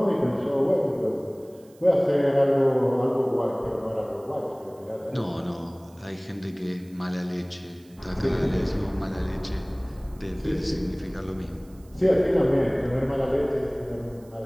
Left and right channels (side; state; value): right; noise; hiss, 29 dB below the sound